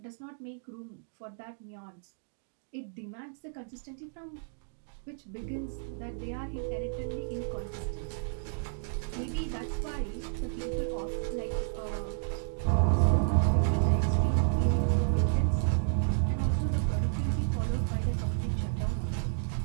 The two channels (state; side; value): silent; left; digital silence